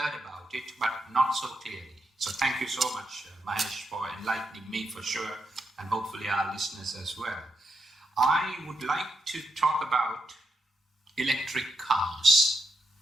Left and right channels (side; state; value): both; normal; correlation 0.83